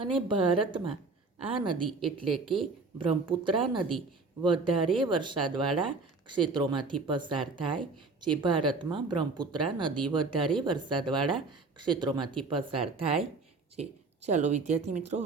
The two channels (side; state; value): left; quieter; 3.9 dB